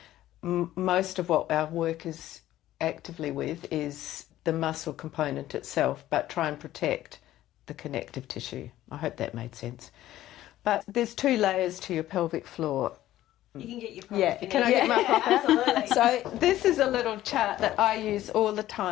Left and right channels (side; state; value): right; quieter; 14.1 dB